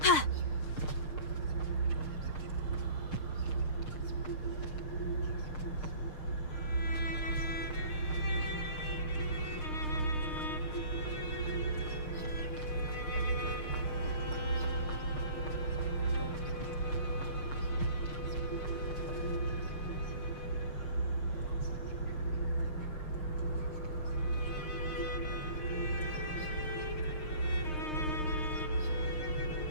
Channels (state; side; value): late; right; 6.5 ms